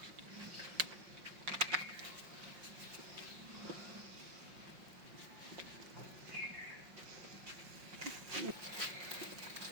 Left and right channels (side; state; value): left; late; 5.6 ms